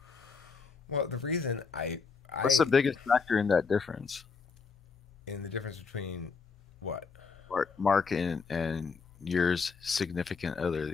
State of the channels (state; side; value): quieter; right; 5.1 dB